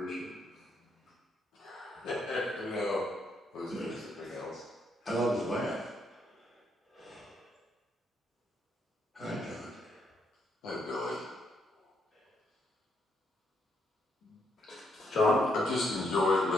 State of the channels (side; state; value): both; normal; correlation 0.75